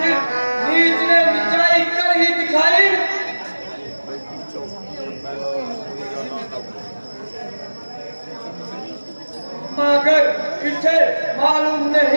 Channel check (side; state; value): both; inverted; correlation -1.00